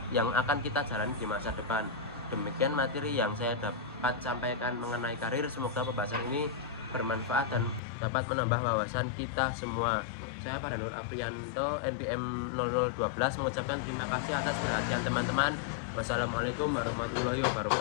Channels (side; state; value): right; drops out; at 7.8 s